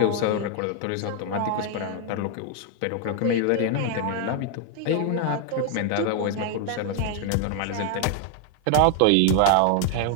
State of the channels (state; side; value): different; both; correlation 0.00